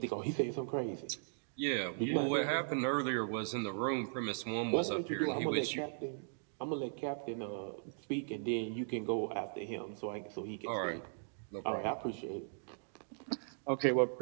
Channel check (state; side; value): silent; left; digital silence